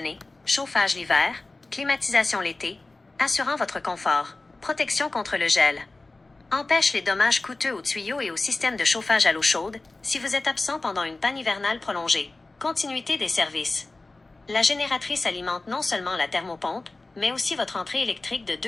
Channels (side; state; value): right; quieter; 3.2 dB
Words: Chauffage l'hiver, climatisation l'été, assurant votre confort. Protection contre le gel. Empêche les dommages coûteux aux tuyaux et au système de chauffage à l'eau chaude si vous êtes absent pendant une panne hivernale prolongée. Continuité des services. La génératrice alimente non seulement la thermopompe, mais aussi votre entrée électrique de